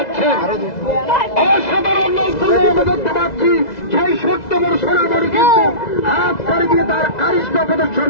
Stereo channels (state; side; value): late; right; 2.0 ms